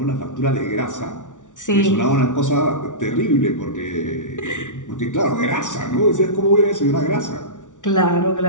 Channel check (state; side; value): late; right; 0.87 ms